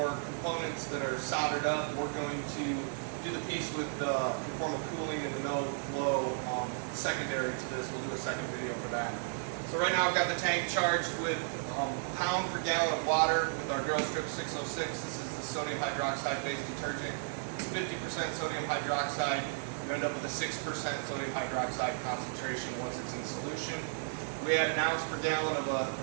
components that are soldered up. We're going to do the piece with the conformal cooling and the no flow secondary to this. We'll do a second video for that. So right now I've got the tank charged with pound per gallon of water with our Drill Strip 606. This is the sodium hydroxide based detergent. It's 50% sodium hydroxide. You end up with a 6% sodium hydroxide concentration once it's in solution. We add an ounce per gallon of a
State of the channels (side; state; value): left; silent; digital silence